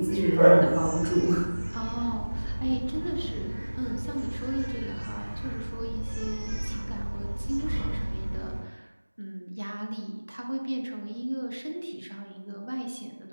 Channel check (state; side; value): inverted; both; correlation -1.00